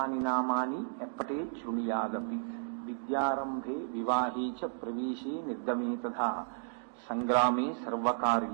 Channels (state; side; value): silent; left; digital silence